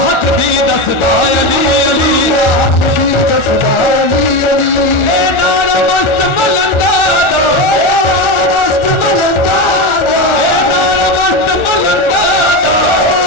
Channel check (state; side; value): late; right; 1.4 ms